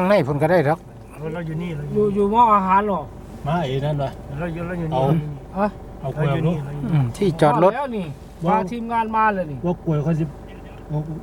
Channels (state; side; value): identical; both; correlation 1.00